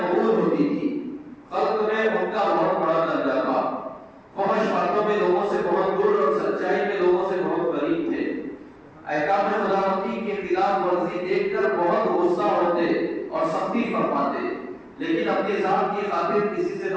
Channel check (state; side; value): identical; both; correlation 1.00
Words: ہوتی تھی، خلق میں ان کا بہت بڑا درجہ تھا، فحش باتوں میں لوگوں سے بہت دور اور سچائی میں لوگوں سے بہت قریب تھے، احکام خداوندی کے خلاف ورزی دیکھ کر بہت غصہ ہوتے اور سختی فرماتے، لیکن اپنی ذات کی خاطر کسی سے